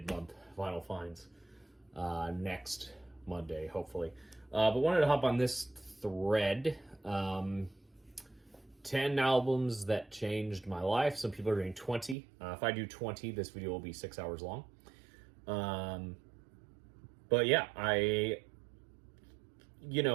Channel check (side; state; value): left; drops out; at 12.2 s